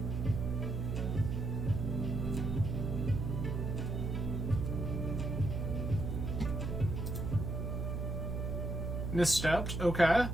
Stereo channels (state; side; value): noise; right; hum, 2 dB below the sound